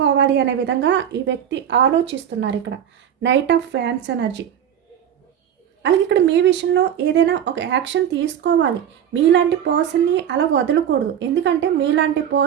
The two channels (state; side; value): quieter; left; 9.4 dB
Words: అనే విధంగా ఈ వ్యక్తి ఆలోచిస్తున్నారు. ఇక్కడ నైట్ ఆఫ్ ఫ్యాన్స్ ఎనర్జీ. అలాగే ఇక్కడ మీ విషయంలో ఏదైనా ఒక యాక్షన్ తీసుకోవాలి. మీలాంటి పర్సన్ని అలా వదలకూడదు. ఎందుకంటే మీలాంటి